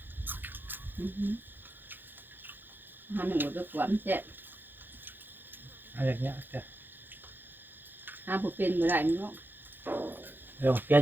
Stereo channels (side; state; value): left; late; 0.094 ms